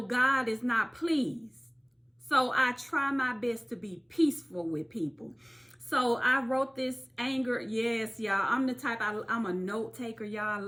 God is not pleased. So I try my best to be peaceful with people. So I wrote this anger. Yes, y'all. I'm the type, I'm a note taker, y'all.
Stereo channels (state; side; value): identical; both; correlation 1.00